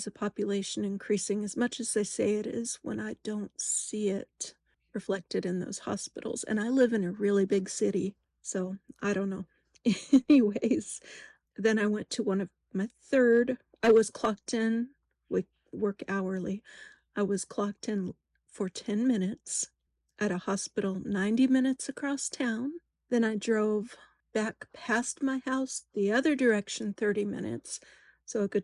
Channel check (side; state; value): both; identical; correlation 1.00